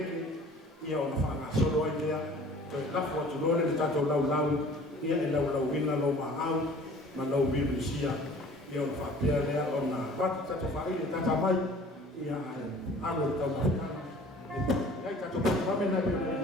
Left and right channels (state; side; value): normal; both; correlation 0.49